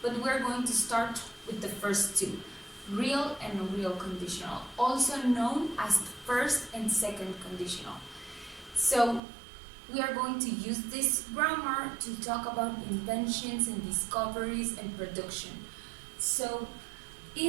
but we're going to start with the first two, real and unreal conditional, also known as first and second conditional. So we are going to use this grammar to talk about inventions and discoveries and production. So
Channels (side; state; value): left; drops out; at 9.2 s